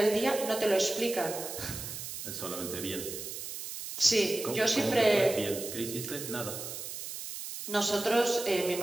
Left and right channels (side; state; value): right; noise; hiss, 8 dB below the sound